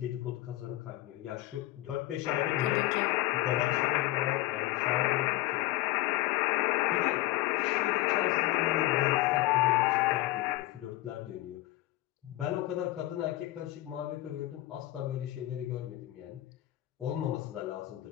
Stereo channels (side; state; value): right; quieter; 17.1 dB